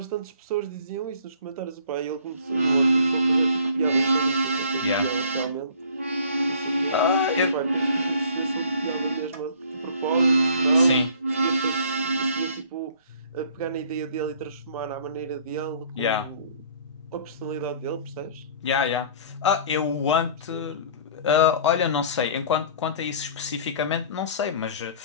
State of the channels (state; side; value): inverted; both; correlation -0.51